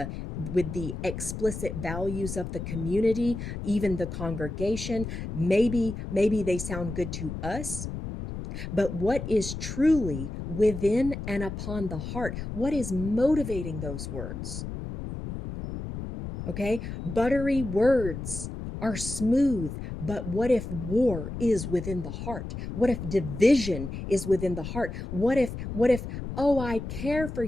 explicit values of the community, even the congregation. Maybe they sound good to us. But what is truly within and upon the heart? What is motivating those words? Okay? Buttery words are smooth, but what if war is within the heart? What if division is within the heart? What if oh, I care for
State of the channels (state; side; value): noise; left; rumble, 7 dB below the sound